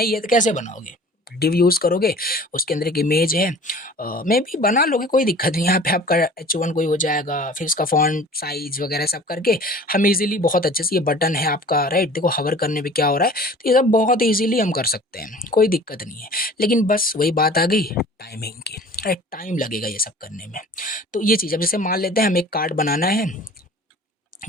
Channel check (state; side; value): normal; both; correlation 0.45